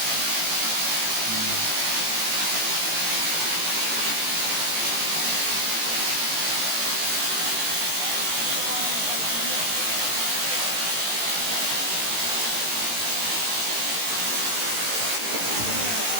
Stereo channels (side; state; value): left; late; 18 ms